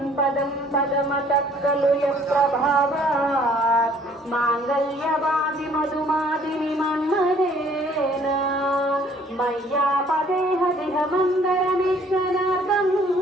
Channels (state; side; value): normal; both; correlation 0.58